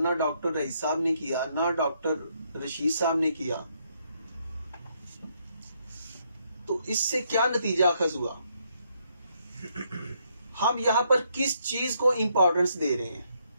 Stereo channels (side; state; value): both; inverted; correlation -0.74